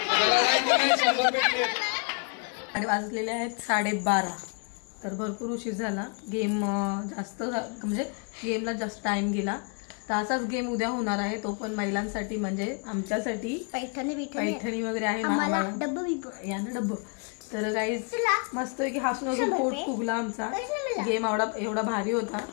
भेटले आणि वाजलेले आहेत 12:30 तर भरपूर उशीर झाला गेम जास्त म्हणजे गेमला जास्त टाइम गेला तर असाच गेम उद्या होणार आहे तो पण महिलांसाठी म्हणजे आमच्यासाठी पैठणी वगैरे आहे यानं डब्ब तर गाईज मस्त की हसून हसून पोट फुगला आमचा गेम एवढा भारी होता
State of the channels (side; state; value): right; quieter; 38.2 dB